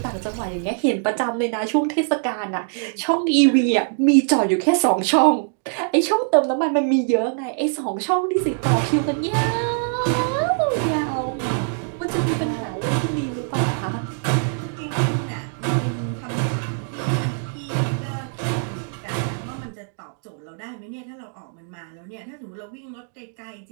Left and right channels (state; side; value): silent; left; 58 dB below the other